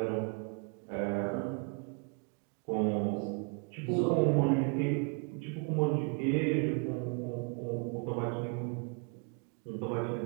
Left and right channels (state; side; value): quieter; left; 34.3 dB